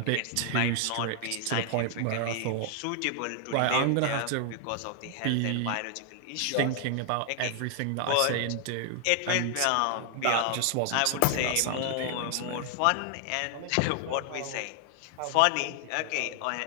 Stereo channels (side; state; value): both; different; correlation 0.00